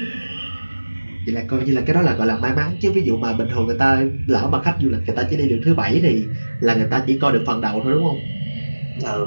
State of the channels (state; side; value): inverted; both; correlation -1.00